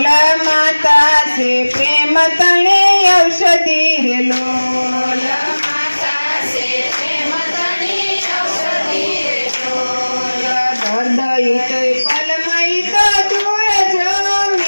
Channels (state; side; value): inverted; both; correlation -1.00